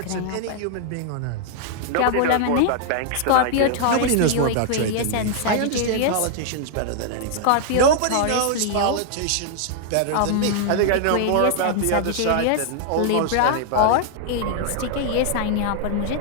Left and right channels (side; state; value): both; different; correlation -0.01